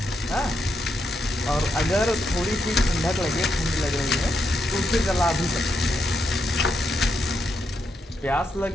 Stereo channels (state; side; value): normal; both; correlation 0.81